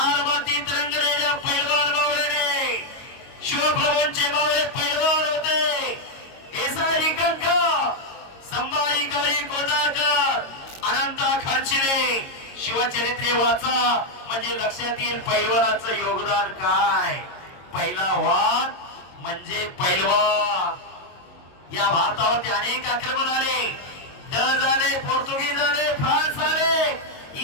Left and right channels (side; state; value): right; late; 22 ms